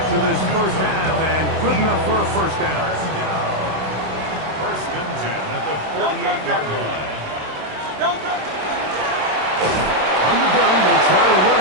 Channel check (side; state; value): left; late; 27 ms